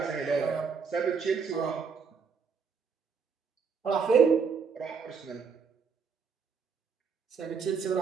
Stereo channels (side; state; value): left; quieter; 5.8 dB